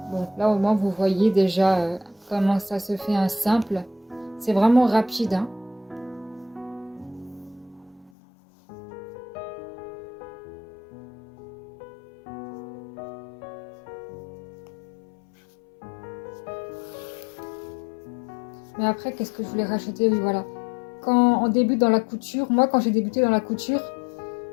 Bon, là, au moins, vous voyez déjà comment ça se fait un simple. C'est vraiment rapide, hein. Mais après, qu'est-ce que je voulais rajouter? Oui, voilà. Quand on débute dans la couture, moi, quand j'ai débuté dans la couture,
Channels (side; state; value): right; drops out; at 8.1 s